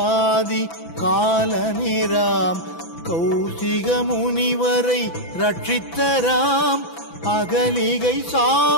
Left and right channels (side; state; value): right; late; 6.0 ms